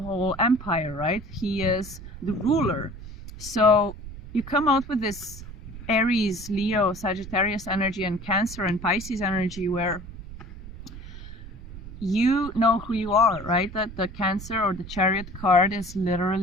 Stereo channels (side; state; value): right; noise; rumble, 13 dB below the sound